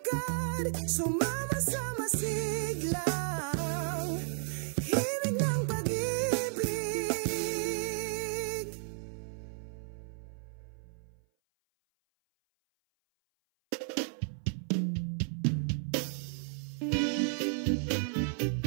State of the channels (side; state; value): left; silent; 56 dB below the other